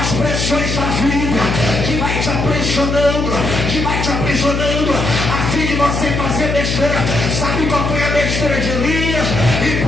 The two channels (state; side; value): noise; left; hum, 1 dB below the sound